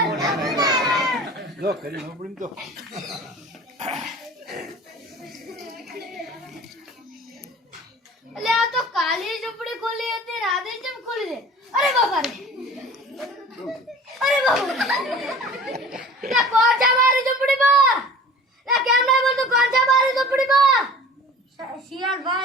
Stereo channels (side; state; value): both; normal; correlation 0.43